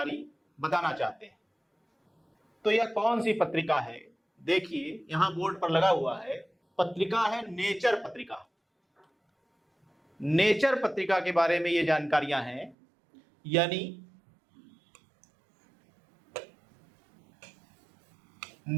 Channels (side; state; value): left; drops out; at 12.8 s